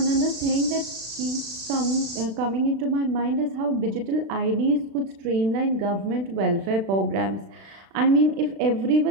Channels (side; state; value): left; late; 36 ms